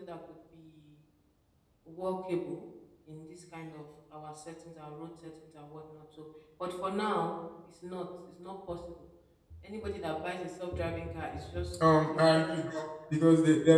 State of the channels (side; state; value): both; identical; correlation 1.00